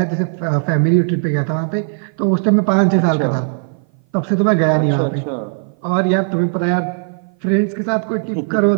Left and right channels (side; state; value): left; silent; 57 dB below the other